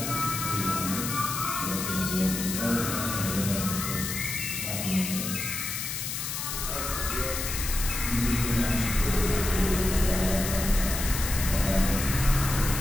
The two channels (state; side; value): noise; left; hiss, 4 dB below the sound